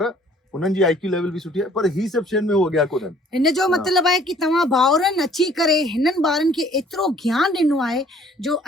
हुननि जी IQ लेवल बि सुठी आहे, पर ही सभु शयुनि में उहो अॻियां कोन्हनि। हिन जो मतिलबु आहे कि तव्हां भाउरनि अची करे हिननि ॿारनि खे एतिरो ज्ञान ॾिनो आहे जो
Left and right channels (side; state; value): both; normal; correlation 0.56